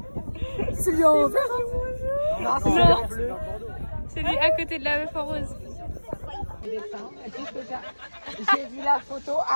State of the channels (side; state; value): both; inverted; correlation -1.00